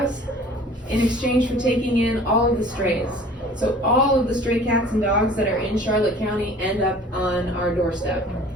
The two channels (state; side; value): normal; both; correlation 0.48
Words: in exchange for taking in all of the strays. So all of the stray cats and dogs that are in Charlotte County end up on our doorstep